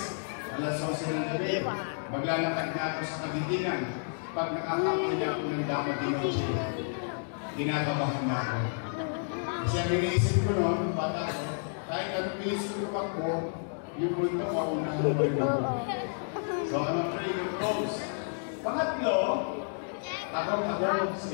alas 11 ng gabi. Maglalakad na ako sa Kagitingan. Pag nakakapin niya ako ng dapat din ako siya, ginagabahan na ako. Kasi ang iniisip ko noon, bata ko, kahit anong iniisip ko ako, yung punto ko, unahan mo rin ako. So, I'm afraid of those. Pangatlo, takot ako sa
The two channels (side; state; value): right; silent; digital silence